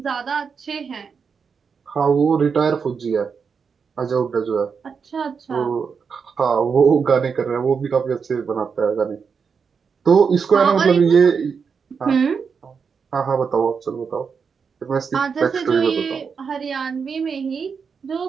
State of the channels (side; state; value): left; quieter; 5.9 dB